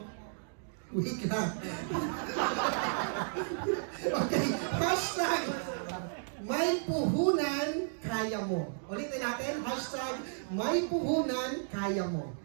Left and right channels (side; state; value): left; silent; digital silence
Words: Wait lang. Okay. Hashtag may puhunan, kaya mo. Ulitin natin. Hashtag may puhunan, kaya mo.